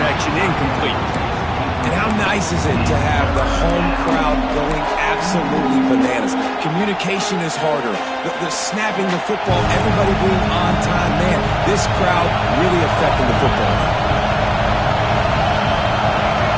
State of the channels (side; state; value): both; identical; correlation 1.00